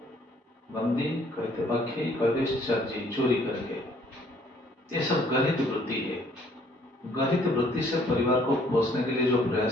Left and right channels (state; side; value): normal; both; correlation 0.61